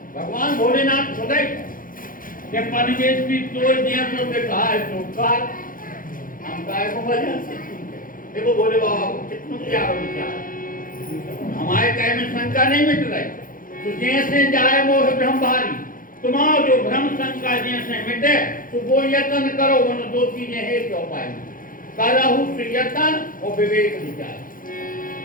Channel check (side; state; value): right; late; 0.40 ms